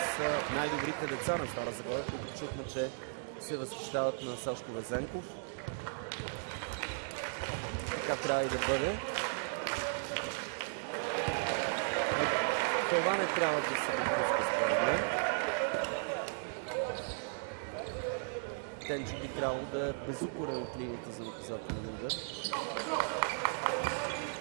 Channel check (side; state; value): left; silent; digital silence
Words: най-добрите деца на Стара Загора, които чухме, че се възхищават на Сашко Везенков. Така трябва и да бъде. Това не трябва да се допуска, според мен. Тенчо би трябвало да е безукорен от линията за наказателен удар.